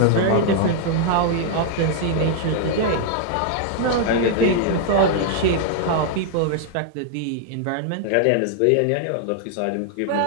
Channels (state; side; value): different; both; correlation -0.01